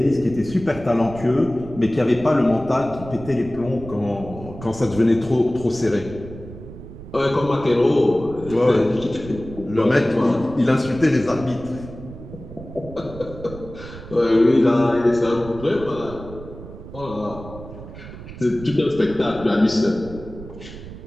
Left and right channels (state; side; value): noise; right; rumble, 14 dB below the sound